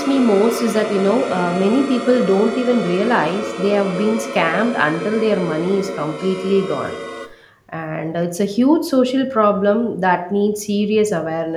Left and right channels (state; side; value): identical; both; correlation 1.00